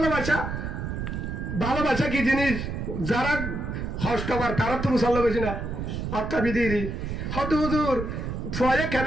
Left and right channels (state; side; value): noise; right; rumble, 4 dB below the sound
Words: ভালোবাসা কি জিনিস যারা হস্তবার তারা তো মুসল্লা বেশি না অর্থা বিধি হদু হুজুর ফয়ে